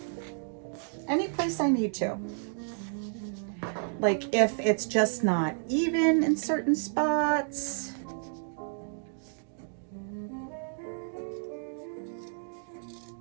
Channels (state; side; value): silent; left; digital silence